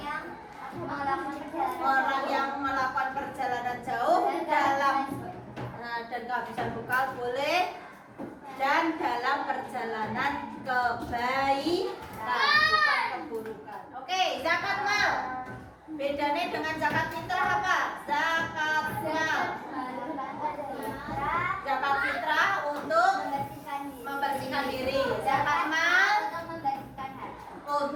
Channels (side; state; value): both; identical; correlation 1.00